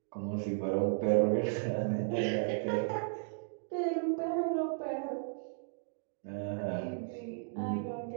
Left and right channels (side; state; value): left; silent; digital silence